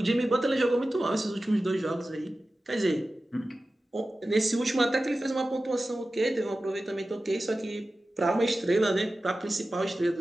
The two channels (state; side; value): normal; both; correlation 0.95